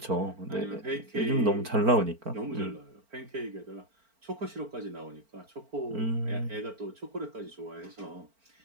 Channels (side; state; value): left; late; 4.4 ms